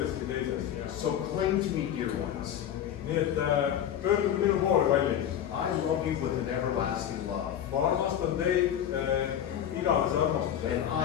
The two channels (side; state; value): right; quieter; 10.0 dB